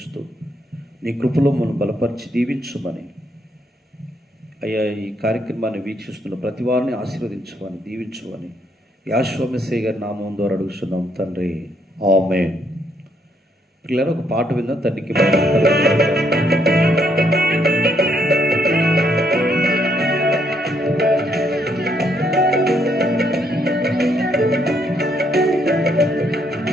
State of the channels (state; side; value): normal; both; correlation 0.72